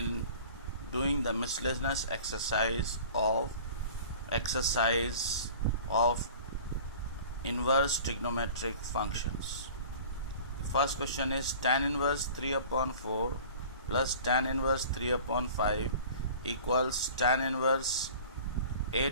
doing the miscellaneous exercise of inverse trigonometric functions. The first question is tan inverse 3 upon 4 plus tan inverse 3 upon 5 equals tan inverse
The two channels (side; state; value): both; inverted; correlation -0.43